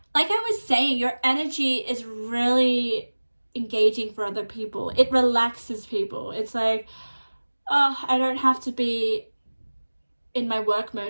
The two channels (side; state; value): both; inverted; correlation -1.00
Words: like I was saying, your energy is really engaging for other people. It relaxes people. It's like, oh, I don't have to be in my work